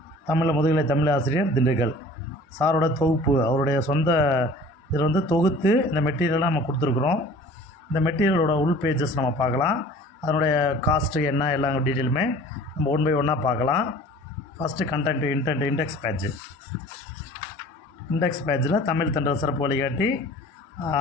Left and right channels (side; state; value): both; normal; correlation 0.46